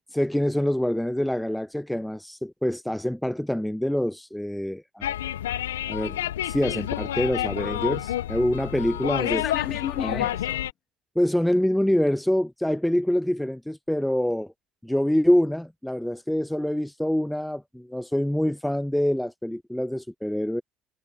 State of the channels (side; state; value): both; normal; correlation 0.84